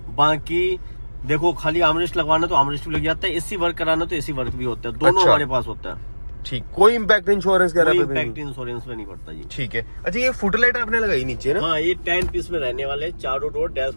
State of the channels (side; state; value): both; inverted; correlation -1.00